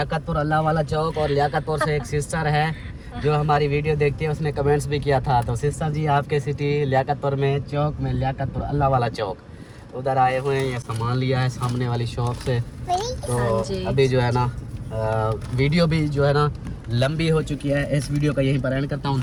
अल्लाह वाला चौक। और लियाकतपुर से एक सिस्टर है जो हमारी वीडियो देखती है, उसने कमेंट्स भी किया था। तो सिस्टर जी आपके सिटी लियाकतपुर में चौक में लियाकतपुर अल्लाह वाला चौक उधर आए हुए हैं। ये सामान लिया है सामने वाली शॉप से। तो अभी जो है ना वीडियो भी जो है ना लंबी हो चुकी है। इस वीडियो का यहीं पर एंड करता हूँ।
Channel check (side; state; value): both; identical; correlation 1.00